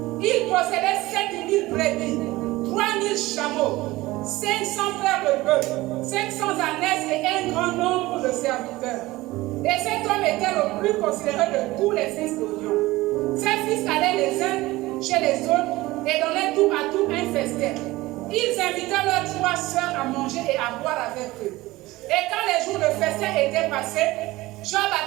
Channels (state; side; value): quieter; left; 19.0 dB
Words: Il possédait 7000 brebis, 3000 chameaux, 500 paires de bœufs, 500 ânesses et un grand nombre de serviteurs. Et cet homme était le plus considéré de tous les fils d'Orion. Ses fils allaient les uns chez les autres et donnaient tout à tout un festin. Ils invitaient leurs 3 sœurs à manger et à boire avec eux. Et quand les jours de festin étaient passés, Job